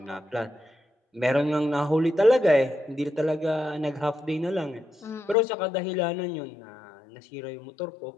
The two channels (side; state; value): right; drops out; at 5.4 s